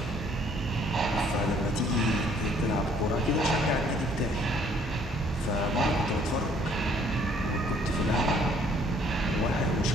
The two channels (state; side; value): normal; both; correlation 0.61